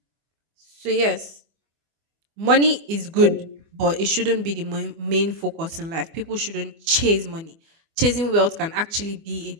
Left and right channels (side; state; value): left; late; 24 ms